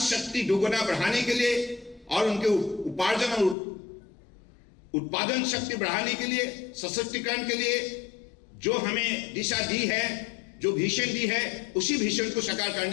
दोगुना बढ़ाने के लिए और उनके उपार्जन और उत्पादन शक्ति बढ़ाने के लिए, सशक्तिकरण के लिए जो हमें दिशा दी है, जो विजन दी है, उसी विजन को साकार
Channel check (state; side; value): drops out; right; at 3.6 s